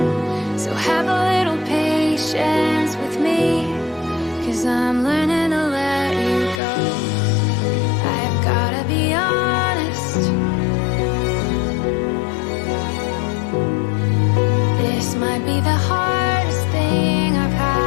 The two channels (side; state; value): right; drops out; at 6.6 s